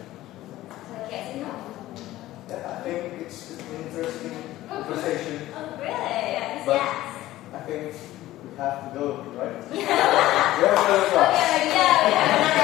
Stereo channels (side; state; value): right; quieter; 15.6 dB